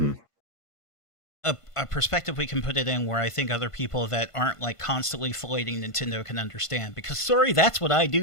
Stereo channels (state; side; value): late; right; 1.5 ms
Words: a perspective we can put it in where I think other people that aren't, like, constantly filleting Nintendo can understand. Because, sorry, that's what I